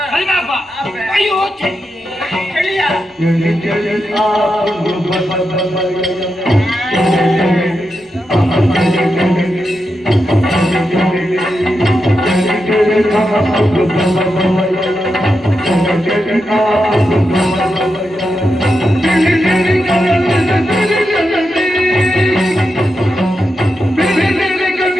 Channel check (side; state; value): both; normal; correlation 0.87